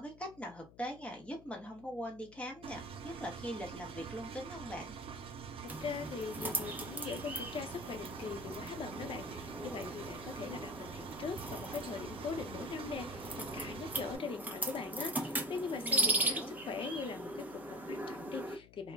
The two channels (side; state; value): left; noise; hum, 21 dB below the sound